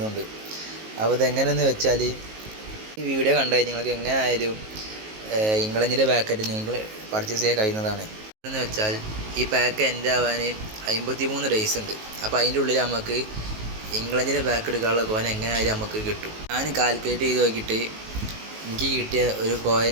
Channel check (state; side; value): late; left; 19 ms